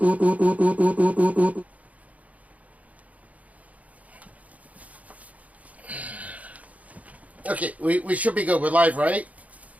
Okay, we should be good. We're live, right?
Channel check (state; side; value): late; left; 0.070 ms